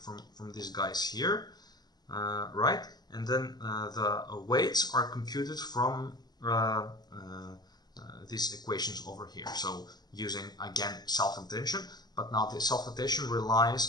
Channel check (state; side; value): late; right; 0.20 ms